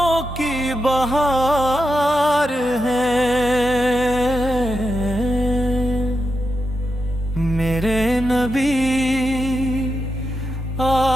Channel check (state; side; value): normal; both; correlation 0.87